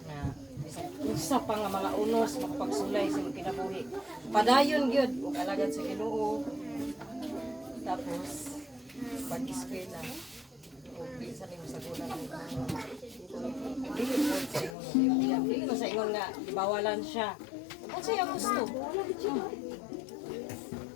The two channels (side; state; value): right; drops out; at 14.8 s